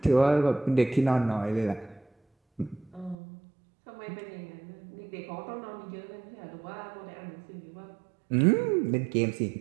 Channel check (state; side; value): drops out; left; at 3.2 s